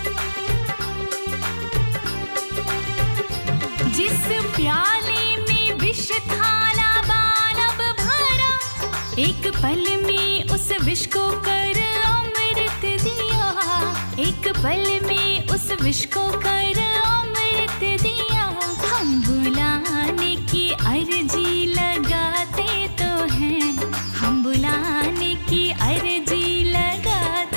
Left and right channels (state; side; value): inverted; both; correlation -1.00